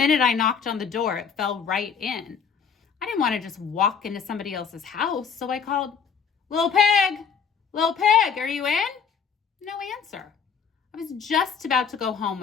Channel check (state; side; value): quieter; right; 6.5 dB